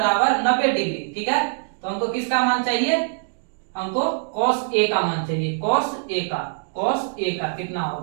90 डिग्री। ठीक है, तो हमको किसका मान चाहिए, हमको cos a का मान चाहिए, cos a का कितना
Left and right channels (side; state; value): left; silent; digital silence